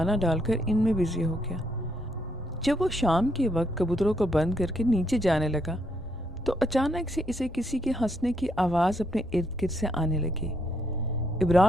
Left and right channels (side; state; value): both; normal; correlation 0.75